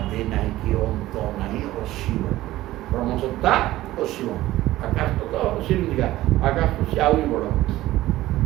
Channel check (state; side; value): quieter; left; 16.0 dB